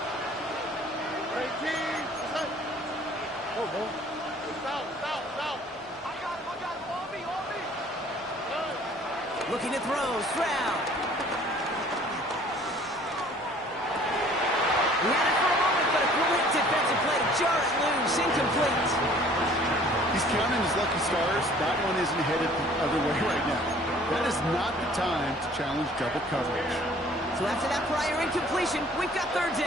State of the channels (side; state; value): both; normal; correlation 0.53